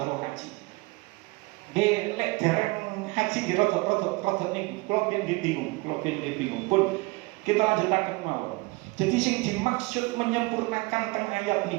haji. Lek dereng haji di rodok niku. Kalau bingung pun kita lanjutaken mawon. Jadi sing dimaksud menyempurnakan teng ayat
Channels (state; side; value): quieter; left; 25.0 dB